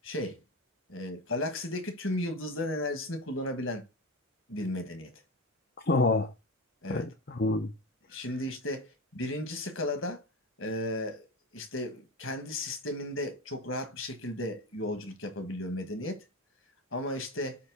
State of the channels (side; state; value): both; normal; correlation 0.23